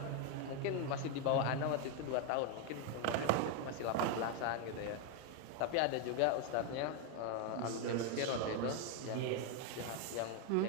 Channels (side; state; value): both; different; correlation 0.01